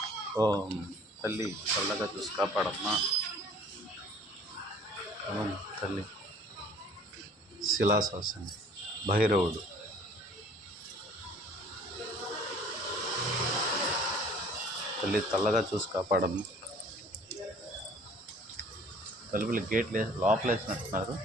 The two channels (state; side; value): normal; both; correlation 0.52